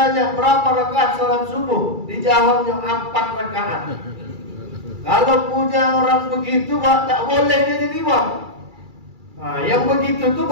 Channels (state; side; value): late; left; 2.3 ms